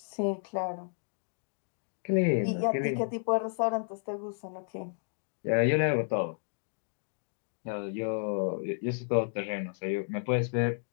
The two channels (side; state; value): right; silent; digital silence